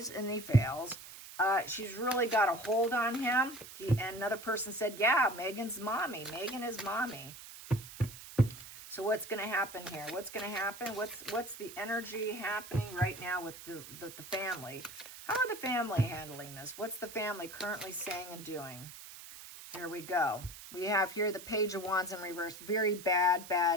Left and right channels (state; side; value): noise; right; hiss, 14 dB below the sound